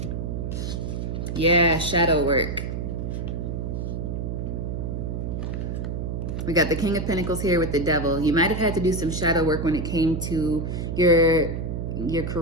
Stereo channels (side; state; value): right; noise; hum, 3 dB below the sound